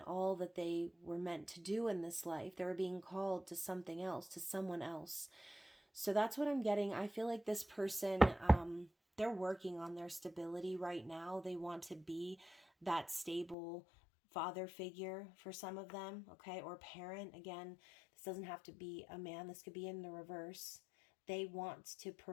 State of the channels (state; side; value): drops out; right; at 13.6 s